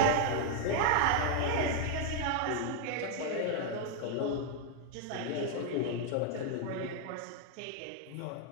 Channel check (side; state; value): both; different; correlation 0.00